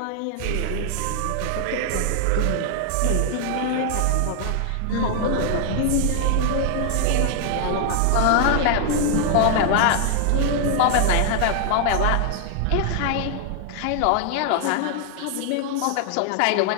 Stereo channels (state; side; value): different; both; correlation 0.00